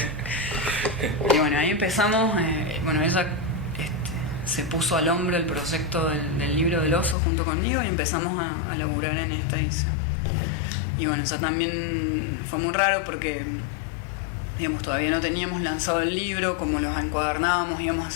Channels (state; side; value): drops out; right; at 7.2 s